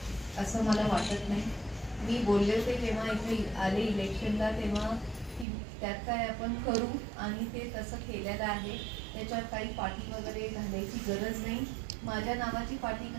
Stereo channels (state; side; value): drops out; left; at 5.5 s